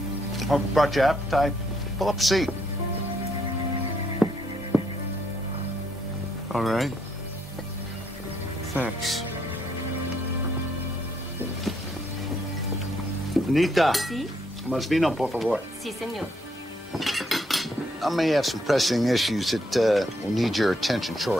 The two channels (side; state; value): both; normal; correlation 0.73